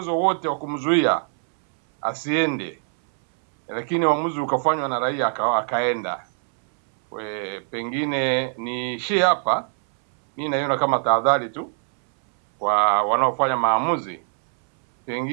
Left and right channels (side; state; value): left; silent; 64 dB below the other